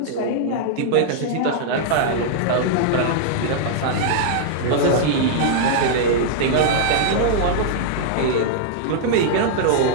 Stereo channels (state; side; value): different; both; correlation -0.02